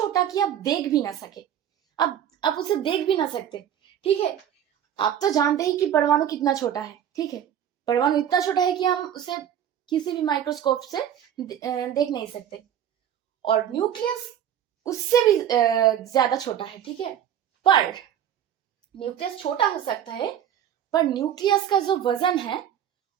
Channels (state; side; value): quieter; left; 9.9 dB